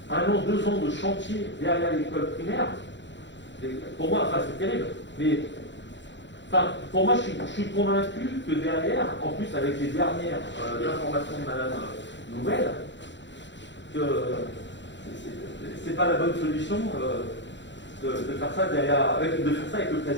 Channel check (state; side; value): late; right; 0.53 ms